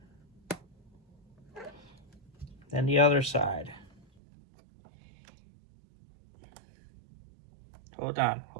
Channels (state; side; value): drops out; left; at 4.0 s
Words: Then the other side. Hold on,